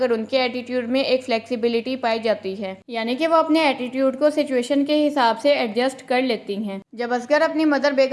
उनके एटीट्यूड में एक फ्लेक्सिबिलिटी पाई जाती है, यानी कि वो अपने एटीट्यूड को सिचुएशन के हिसाब से एडजस्ट कर लेती हैं। जब असगर अपनी मदर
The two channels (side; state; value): both; identical; correlation 1.00